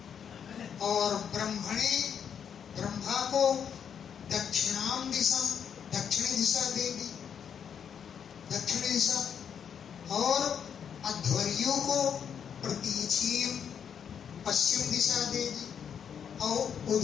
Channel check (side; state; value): right; quieter; 7.9 dB